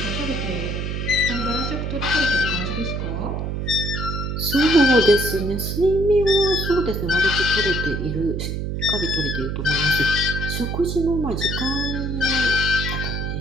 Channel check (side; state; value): right; noise; hum, 3 dB below the sound